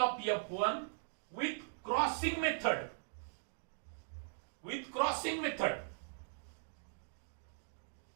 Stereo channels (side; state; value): left; silent; digital silence